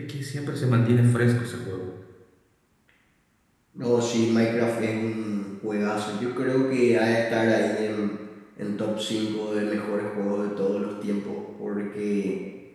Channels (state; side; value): identical; both; correlation 1.00